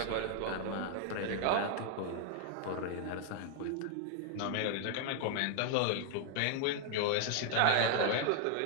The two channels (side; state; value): both; different; correlation 0.00